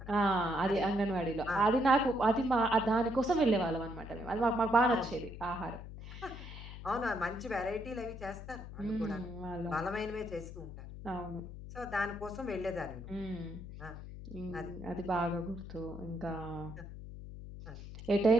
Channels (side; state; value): left; noise; hum, 11 dB below the sound